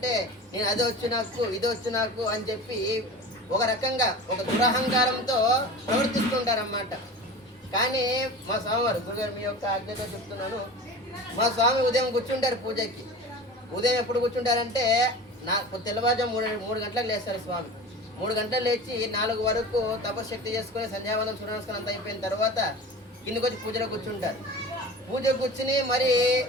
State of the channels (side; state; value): both; normal; correlation 0.35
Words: నేను అది వచ్చు నాకు, ఇది వచ్చు నాకు అని చెప్పి ఒక రకంగా ఒక దురహంకారంతో ప్రవర్తిస్తుంటారన్నమాట. కానీ మా స్వామివారు గురుగారు మీ యొక్క ఆజ్ఞతో చెప్తున్నాను, మా స్వామి ఉదయం కూర్చుంటారు పూజకి. ఉదయం ఎప్పుడు కూర్చుంటారంటే తెల్లవారుజాము 3 గంటలకు లేస్తారు స్వామి. 3 గంటలు లేచి 4 వరకు తపశక్తి చేసుకుని సంధ్యావందనం సూర్యనమస్కారం అంతా అయిపోయిన తర్వాత కిందకి వచ్చి పూజలో కూర్చుంటారు. పూజ కూర్చుని మరి